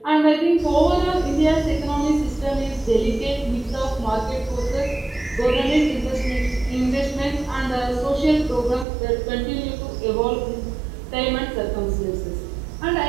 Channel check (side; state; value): left; drops out; at 8.8 s